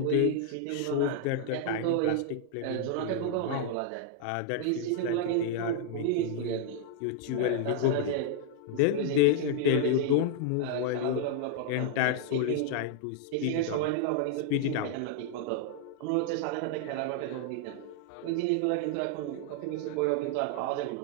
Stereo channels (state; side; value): different; both; correlation 0.00